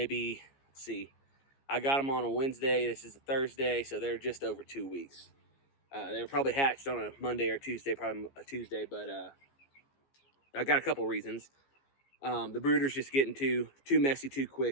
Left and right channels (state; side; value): late; right; 15 ms